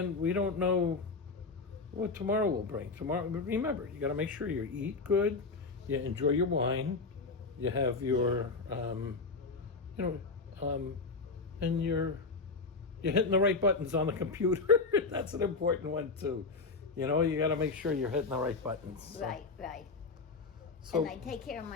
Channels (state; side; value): quieter; right; 4.1 dB